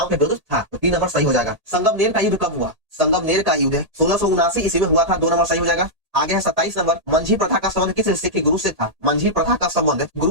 के विरुद्ध था, तो 3 नंबर सही हो जाएगा। संगमनेर का युद्ध कब हुआ? संगमनेर का युद्ध 1679 ईस्वी में हुआ था, 2 नंबर सही हो जाएगा। आगे है 27 नंबर, मंझी प्रथा का संबंध किस सिख गुरु से था? मंझी प्रथा का संबंध गुरु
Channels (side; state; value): left; late; 1.8 ms